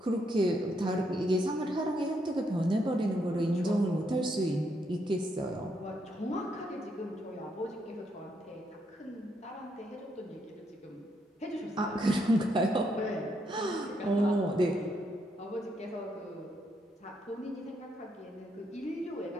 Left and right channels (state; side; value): normal; both; correlation 0.77